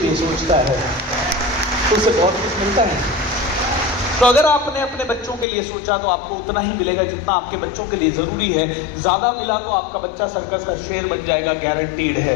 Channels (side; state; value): right; drops out; at 5.5 s